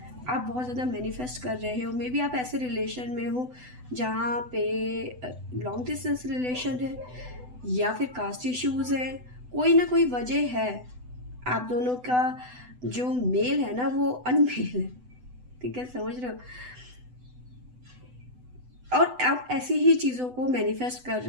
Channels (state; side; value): late; left; 8.0 ms